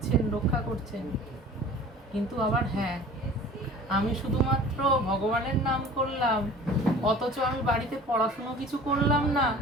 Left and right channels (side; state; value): both; normal; correlation 0.44